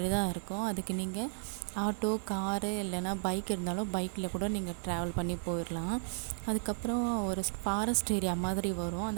தான் இருக்கும். அதுக்கு நீங்கள் ஆட்டோ, காரு இல்லைன்னா பைக் இருந்தாலும் பைக்கில் கூட நீங்கள் ட்ராவல் பண்ணி போயிடலாம். அதுக்கப்புறம் ஒரு ஃபாரஸ்ட் ஏரியா மாதிரி வரும்.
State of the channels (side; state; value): left; silent; 55 dB below the other